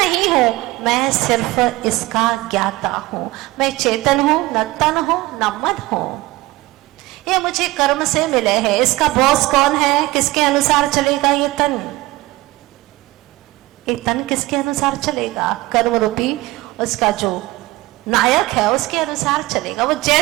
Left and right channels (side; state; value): left; quieter; 19.5 dB